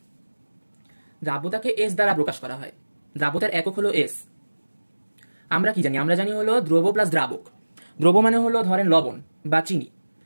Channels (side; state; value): both; inverted; correlation -1.00